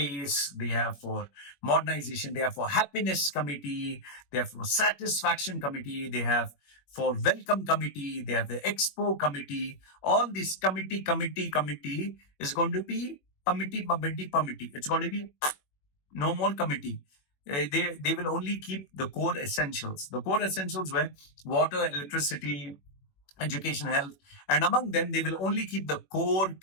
they have for modernization, they have for happiness committee, they have for satisfaction committee, they have for welcome committee, they have the expo committee. All this committee is going to be committee. It's going to be no more committee. They will only keep the core essentials. The core essentials were water, electricity, education, health, and among them, they will only keep the core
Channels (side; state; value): right; late; 21 ms